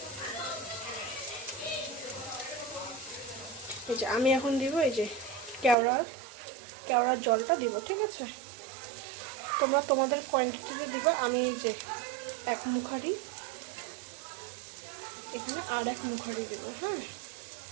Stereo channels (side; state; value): left; drops out; at 5.8 s